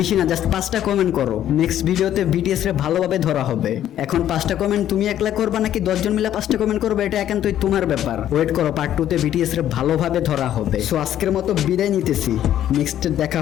না, জাস্ট 5টা কমেন্ট করো, নেক্সট ভিডিওতে বিটিএস রে ভালোভাবে ধরা হবে। এখন 5টা কমেন্ট তুমি একলা করবা নাকি 10 জন মিলে 5টা কমেন্ট করবে, এটা একান্তই তোমার ব্যাপার। ওয়েট করো, পার্ট 2 তে বিটিএস রে ভালোভাবে ধরা হবে। সো আজকের মতো বিদায় নিতেছি, নেক্সট দেখা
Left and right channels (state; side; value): quieter; right; 11.4 dB